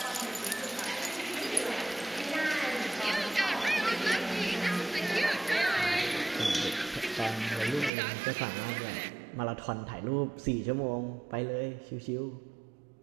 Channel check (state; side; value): drops out; left; at 7.9 s